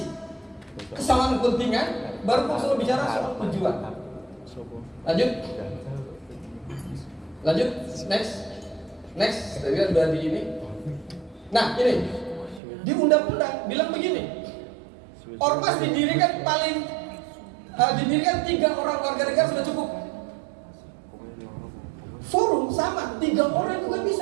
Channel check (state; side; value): drops out; left; at 12.6 s